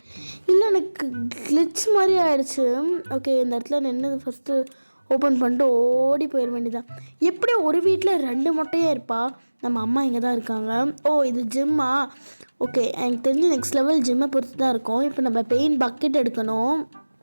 இல்லை, எனக்கு கிளிச் மாதிரி ஆகிடுச்சு. ஓகே, இந்த இடத்துல நின்று ஃபஸ்ட்டு ஓப்பன் பண்ணிட்டு ஓடி போயிட வேண்டியதான். எப்படி ஒரு வீட்டில் 2 மொட்டையாக இருப்பா? நம்ம அம்மா இங்கே தான் இருக்காங்க. இது ஜிம்மா? ஓகே, எனக்கு தெரிஞ்சு நெக்ஸ்ட் லெவல் ஜிம்மை பொறுத்து தான் இருக்கும். இப்போ நம்ம பெயிண்ட் பக்கெட் எடுக்கணும்.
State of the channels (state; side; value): inverted; both; correlation -1.00